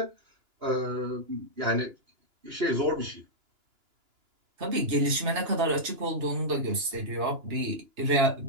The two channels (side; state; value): left; late; 2.9 ms